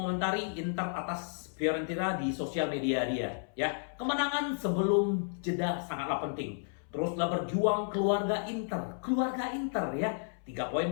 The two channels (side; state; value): right; silent; 56 dB below the other